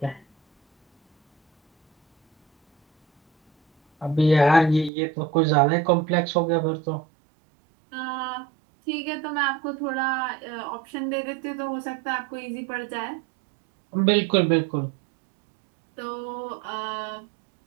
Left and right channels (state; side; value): drops out; left; at 4.9 s